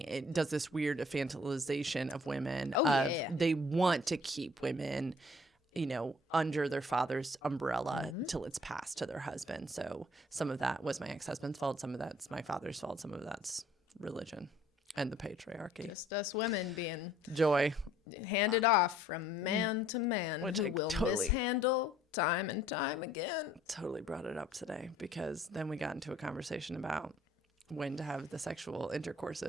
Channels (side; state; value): both; normal; correlation 0.58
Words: it does this weird infantilization of women. They want to keep women, under their father's umbrella till it's passed to their husband. So some of that was my ex-husband's fault. Some of that's my father's fault. Some of that's religion and the patriarchy. Just us women being joy handed off from man to man, which who I will totally mishandle time and time again. Totally brought it up today because then we got into a conversation about when to have the sexual